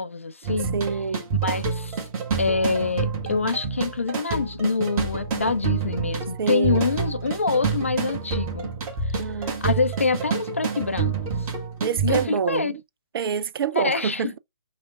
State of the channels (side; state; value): both; inverted; correlation -0.52